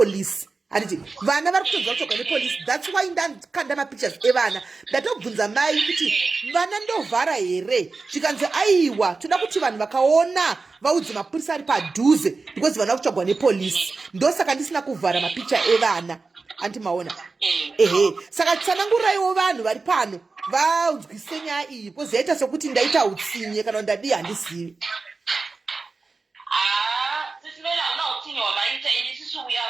handiti vana vari kutodzwa kutsvagwa nepolisi. That's why ndakanda mapictures evana ndatobvunza mai kuti vana ndovhara here, zvikanzi aiwa toda kuti vanhu vakaona vaudze mapurisa ari padhuze because vana kutsvagwa nepolisi. Ndosaka ndisina kuvhara mapicha evana anti maona. Ehe, saka tsananguraiwo vanhu vari pano vanzwise nyaya iyi because yaita sokuti ndaita utsinye kana ndadi handizivi. We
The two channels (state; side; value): quieter; left; 4.0 dB